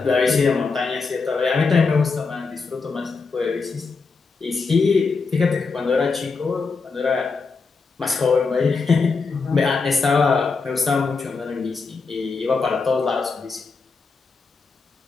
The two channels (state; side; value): quieter; right; 4.5 dB